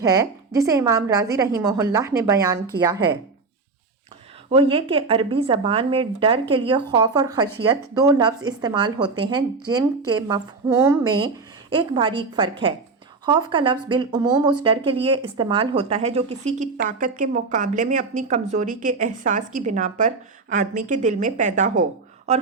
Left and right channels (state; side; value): quieter; left; 4.2 dB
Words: ہے جسے امام رازی رحمہ اللہ نے بیان کیا ہے، وہ یہ کہ عربی زبان میں ڈر کے لیے خوف اور خشیت دو لفظ استعمال ہوتے ہیں جن کے مفہوم میں ایک باریک فرق ہے۔ خوف کا لفظ بالعموم اس ڈر کے لیے استعمال ہوتا ہے جو کسی کی طاقت کے مقابلے میں اپنی کمزوری کے احساس کی بنا پر آدمی کے دل میں پیدا ہو، اور